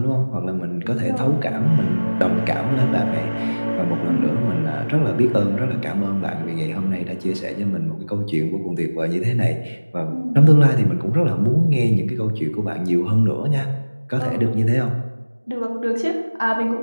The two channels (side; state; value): both; inverted; correlation -1.00